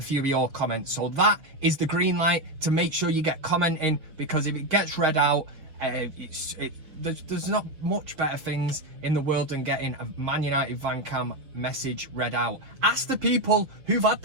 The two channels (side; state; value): left; late; 6.4 ms